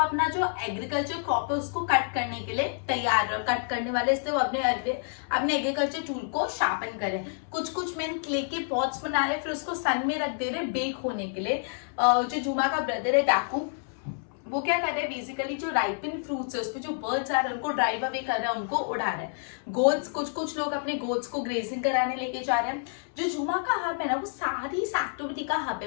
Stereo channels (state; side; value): silent; right; 59 dB below the other